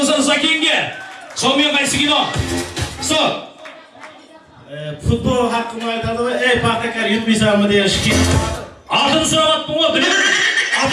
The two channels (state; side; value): identical; both; correlation 1.00